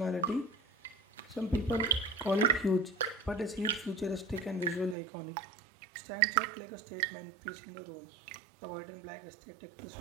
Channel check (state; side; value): drops out; left; at 5.0 s